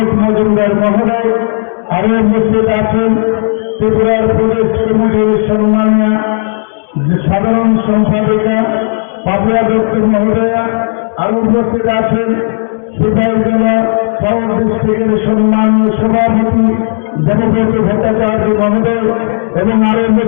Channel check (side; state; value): right; silent; digital silence